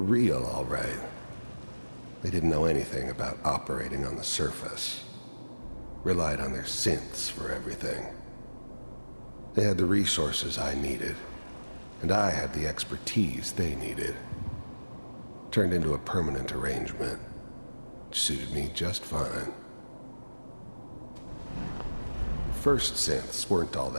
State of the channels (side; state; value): both; inverted; correlation -1.00